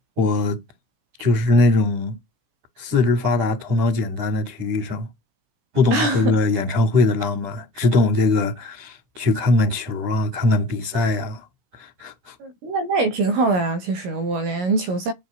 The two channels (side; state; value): left; late; 17 ms